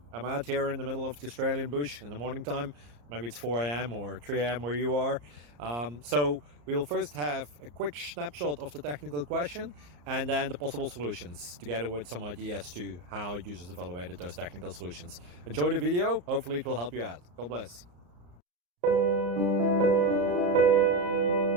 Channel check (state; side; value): late; left; 34 ms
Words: I'm out here in the middle of the Australian bush in the morning time. Maybe it's 4 a.m. or 3 a.m. where you are. So we'll first have a quick snapshot of the technical question and then the possible solutions, together with some ideas to how users evaluated those technical solutions. Enjoy the video, hopefully it will help you out. God bless.